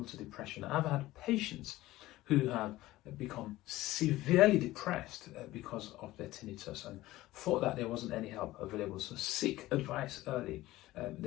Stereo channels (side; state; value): right; quieter; 17.1 dB